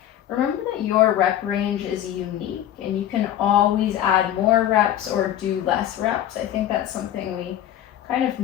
Remember that your rep range is unique and you can always add more reps or do less reps. I think that's something we kind of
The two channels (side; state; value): right; quieter; 11.6 dB